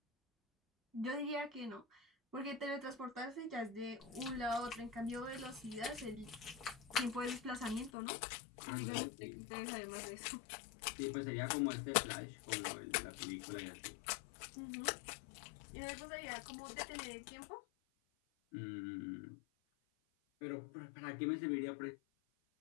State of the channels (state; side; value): drops out; right; at 7.9 s